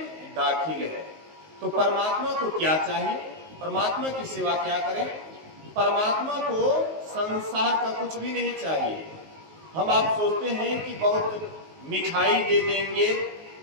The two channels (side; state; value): left; late; 19 ms